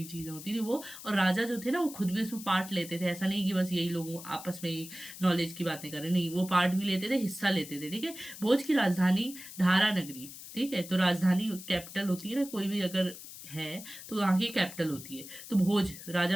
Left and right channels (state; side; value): noise; left; hiss, 13 dB below the sound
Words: चीजें होती थी वो, और राजा जो थे ना वो खुद भी उसमें पार्ट लेते थे। ऐसा नहीं कि बस यही लोग आपस में ही नॉलेज की बातें करें, नहीं, वो पार्ट भी लेते थे, हिस्सा लेते थे। ठीक है, भोज की राजधानी धारा नगरी। ठीक है, तो राजधानी कैपिटल होती है ना, कोई भी अगर है तो वहां की कैपिटल होती है। तो भोज,